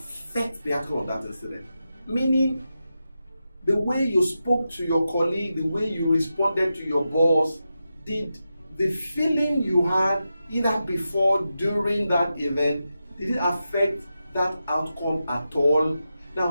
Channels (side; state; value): both; inverted; correlation -0.89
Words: the outcome of that incident? Meaning, the way you spoke to your colleague, the way you responded to your boss, did the feeling you had either before, during that event, did it affect that outcome at all?